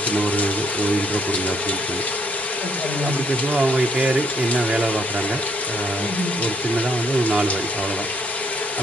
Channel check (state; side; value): normal; both; correlation 0.69